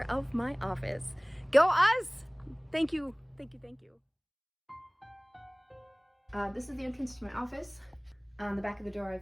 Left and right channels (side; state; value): both; identical; correlation 1.00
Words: of my office. Go us! Thank you, thank you, thank you. This is the entrance to my office. On the back of the door,